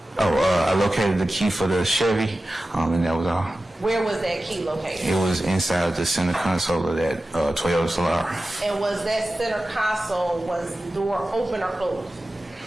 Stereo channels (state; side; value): normal; both; correlation 0.94